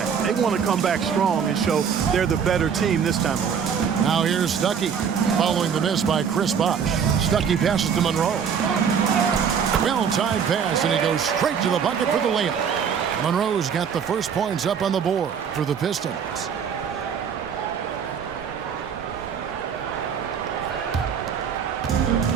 They want to come back strong and show they're the better team this time around. Now here's Stuckey following the miss by Chris Bosh. Stuckey passes to Monroe. Well-timed pass, and he goes straight to the bucket for the layup. Monroe's got the first points up on the board for the Pistons.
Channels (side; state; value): left; quieter; 7.1 dB